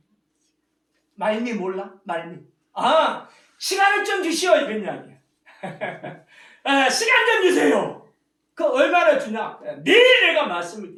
말미 몰라? 말미. 시간을 좀 주시오. 이런 이야기야. 시간 좀 주세요. 그 얼마나 주냐? 내일 내가 말씀을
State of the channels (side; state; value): both; identical; correlation 1.00